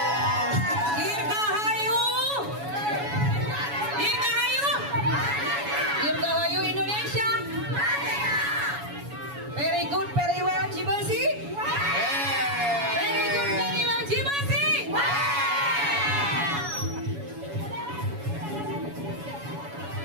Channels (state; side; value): late; left; 7.1 ms